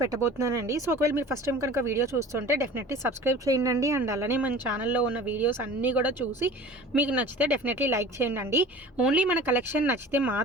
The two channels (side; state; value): both; normal; correlation 0.41